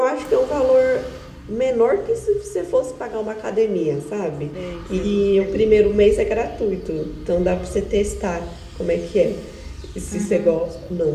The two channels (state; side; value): identical; both; correlation 1.00